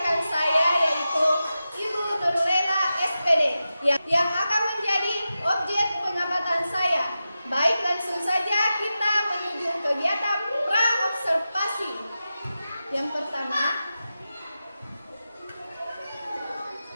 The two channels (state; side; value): inverted; both; correlation -0.92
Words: saya yaitu Ibu Nurlela SPD yang akan menjadi objek pengamatan saya. Baik, langsung saja kita menuju kegiatan pra-observasi. Yang pertama,